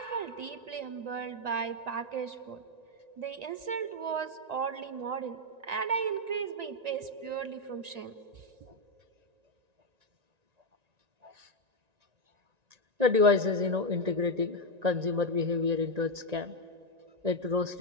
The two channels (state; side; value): late; left; 1.9 ms